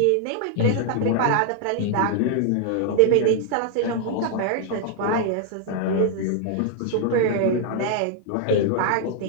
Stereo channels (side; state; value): both; different; correlation 0.00